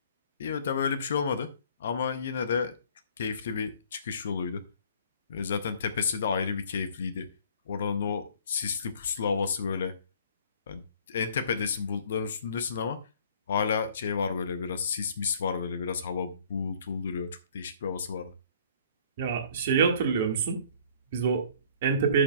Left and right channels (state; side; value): inverted; both; correlation -0.55